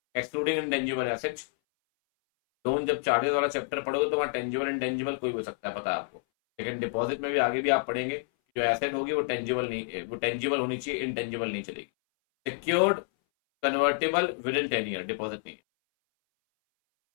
excluding intangible assets, loan जब चार्जेस वाला चैप्टर पढ़ोगे तो वहां टेंजिबल इंटेंजिबल कोई हो सकता है, पता है आपको, लेकिन डिपॉजिट में भी आगे भी आप पढ़ेंगे, जो एसेट होगी वो टेंजिबल नहीं, वो टेंजिबल होनी चाहिए, इंटेंजिबल नहीं चलेगी। Secured convertible within 10 year, deposit नहीं।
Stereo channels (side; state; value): right; silent; 59 dB below the other